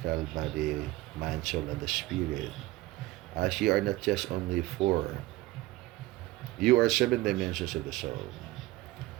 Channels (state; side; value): quieter; left; 18.5 dB